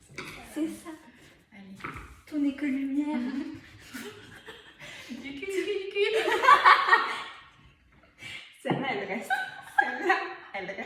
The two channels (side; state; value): both; identical; correlation 1.00